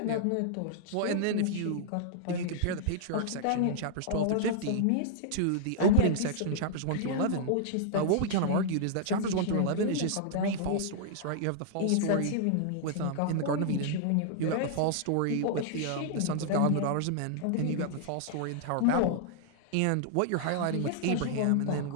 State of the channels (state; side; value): different; both; correlation -0.01